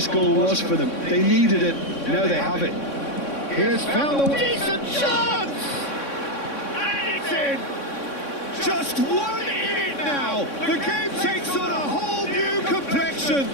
goal was for them. They needed it, now they have it. Here's found a decent chance! And it's in! Just 1 in it now! The game takes on a whole new complexion!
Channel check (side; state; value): right; late; 3.6 ms